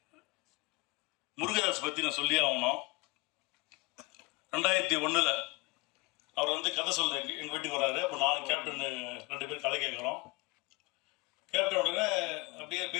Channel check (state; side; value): quieter; right; 23.9 dB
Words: முருகதாஸ் பற்றி நான் சொல்லி ஆகணும். 2001 அவர் கதை சொல்ல எங்கள் வீட்டுக்கு வர்றாரு. அப்போ நான் கேப்டன் 2 பேர் கதை கேட்குறோம். கேப்டன் உடனே அப்படியே